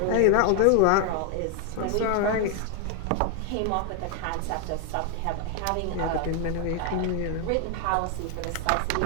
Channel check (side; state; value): both; different; correlation 0.00